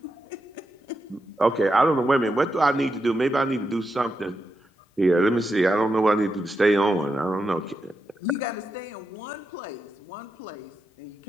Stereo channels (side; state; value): both; normal; correlation 0.86